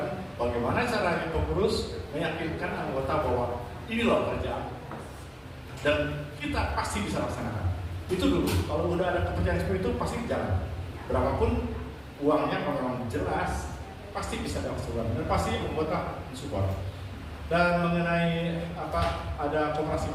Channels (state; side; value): identical; both; correlation 1.00